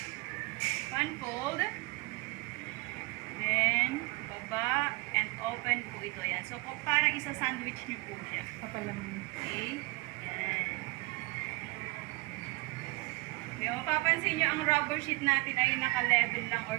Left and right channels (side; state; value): left; quieter; 26.3 dB